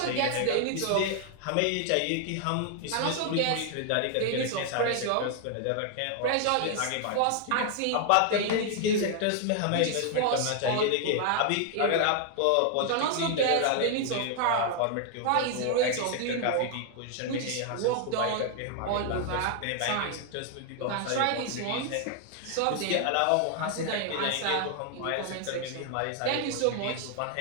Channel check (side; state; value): both; different; correlation 0.00